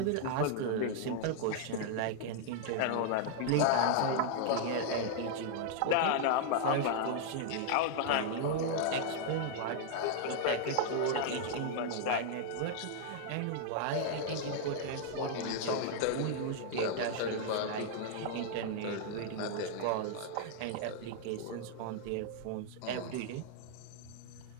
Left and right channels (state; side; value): different; both; correlation -0.01